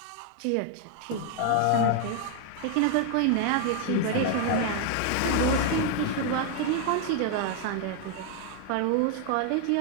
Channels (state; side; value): different; both; correlation 0.00